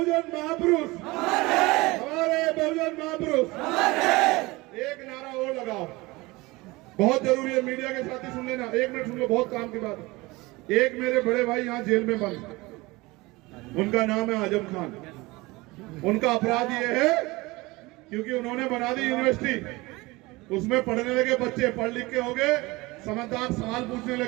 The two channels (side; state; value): left; quieter; 22.2 dB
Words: महापुरुष, हमारे बहुजन महापुरुष। एक नारा और लगाओ, बहुत जरूरी है, मीडिया के साथी सुन लेना, एक मिनट सुन लो, बहुत काम की बात है। एक मेरे बड़े भाई यहाँ जेल में बंद, उनका नाम है आजम खान। उनका अपराध ये है क्योंकि उन्होंने बना दी यूनिवर्सिटी, उसमें पढ़ने लगे बच्चे, पढ़ लिख के हो गए समझदार, सवाल पूछने